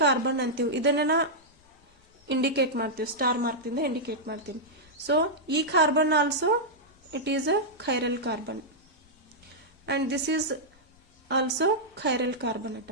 ಕಾರ್ಬನ್ ಅಂತೀವಿ. ಇದನ್ನ ಇಂಡಿಕೇಟ್ ಮಾಡ್ತೀವಿ, ಸ್ಟಾರ್ ಮಾರ್ಕ್ ಇಂದ ಇಂಡಿಕೇಟ್ ಮಾಡ್ತೀನಿ. ಸೊ ಈ carbon also it is a chiral carbon, and this is also chiral carbon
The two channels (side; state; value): both; normal; correlation -0.08